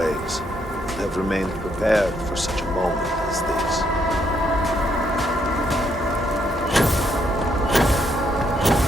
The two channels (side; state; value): both; normal; correlation 0.74